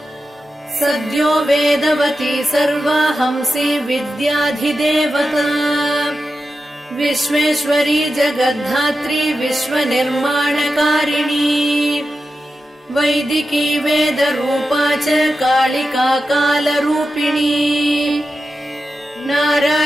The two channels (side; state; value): both; normal; correlation 0.91